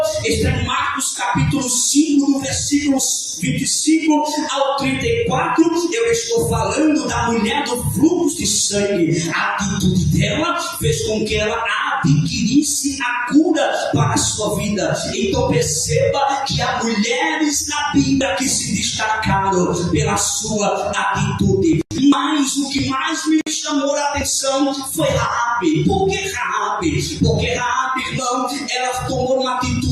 está em Marcos capítulo 5, no versículos 25 ao 34. Eu estou falando da mulher do fluxo de sangue. A atitude dela fez com que ela adquirisse a cura para a sua vida. Então perceba que há mulheres na Bíblia que se destacaram pela sua atitude. Mas o que mais me chamou a atenção foi Raabe. Por que Raabe? Porque Raabe, irmão, ela tomou uma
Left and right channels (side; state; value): both; identical; correlation 1.00